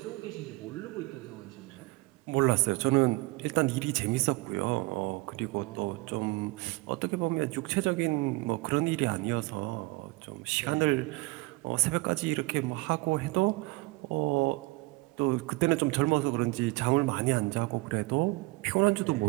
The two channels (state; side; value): quieter; left; 23.1 dB